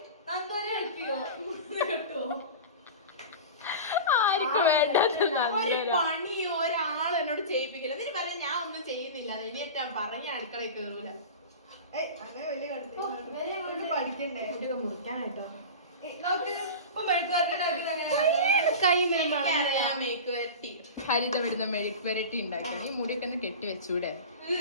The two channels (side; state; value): both; inverted; correlation -0.30